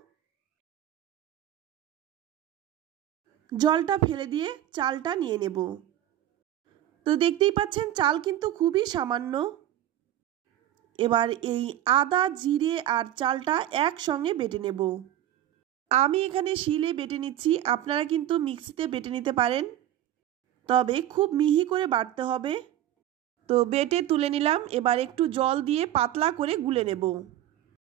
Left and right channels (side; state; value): left; quieter; 12.5 dB